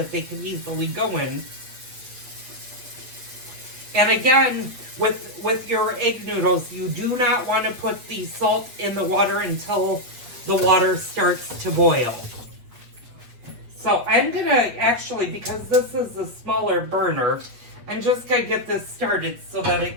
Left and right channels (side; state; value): left; late; 8.3 ms